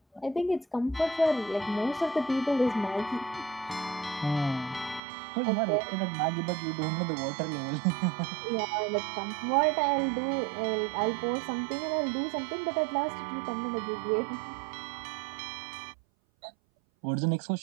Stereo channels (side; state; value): left; drops out; at 5.0 s